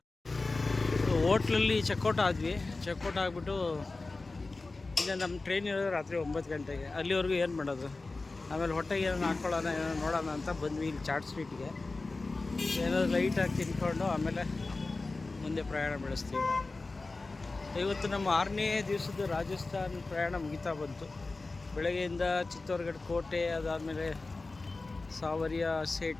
ಹೋಟ್ಲಲ್ಲಿ ಚೆಕ್ಔಟ್ ಆದ್ವಿ. ಚೆಕ್ಔಟ್ ಆಗಿಬಿಟ್ಟು ಇಲ್ಲ, ನಮ್ಮ ಟ್ರೈನ್ ಇರೋದು ರಾತ್ರಿ 9 ಗಂಟೆಗೆ. ಅಲ್ಲಿವರೆಗೂ ಏನು ಮಾಡೋದು, ಆಮೇಲೆ ಹೊಟ್ಟೆಗೆ ಏನೋ ಹಾಕ್ಕೊಳ್ಳೋಣ, ಏನೋ ನೋಡೋಣ ಅಂತ ಬಂದ್ವಿ ಇಲ್ಲಿ ಚಾಟ್ ಸ್ವೀಟ್ಗೆ. ಏನಾದ್ರು ಲೈಟಾಗಿ ತಿನ್ಕೊಂಡು ಆಮೇಲೆ ಮುಂದೆ ಪ್ರಯಾಣ ಬೆಳೆಸ್ತೀವಿ. ಇವತ್ತು ನಮ್ಮ 6ನೇ ದಿವಸದ ರಾಜಸ್ಥಾನ್ ಪ್ರಯಾಣ ಮುಗಿತಾ ಬಂತು. ಬೆಳಗ್ಗೆಯಿಂದ ಚಿತ್ತೋರ್ಗಢ ಕೋಟೆ, ಅದಾದಮೇಲೆ ಸಾವರಿಯ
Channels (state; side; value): quieter; right; 3.5 dB